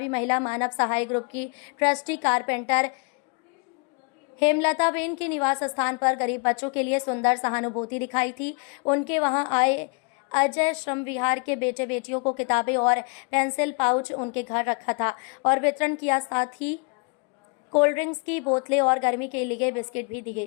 महिला मानव सहाय ग्रुप की ट्रस्टी कारपेंटर हेमलता बेन के निवास स्थान पर गरीब बच्चों के लिए सुंदर सहानुभूति दिखाई थी। उनके वहां आए अजय श्रम विहार के बेटे बेटियों को किताबें और पेंसिल पाउच उनके घर रखा था और वितरण किया। साथ ही कोल्ड ड्रिंक्स की बोतलें और गर्मी के लिए बिस्किट भी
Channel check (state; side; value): quieter; right; 34.0 dB